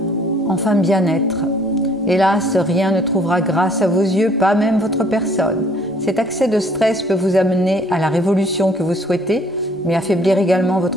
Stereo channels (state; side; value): normal; both; correlation 0.59